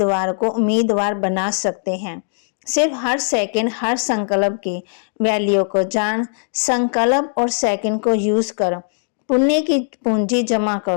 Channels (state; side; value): silent; right; digital silence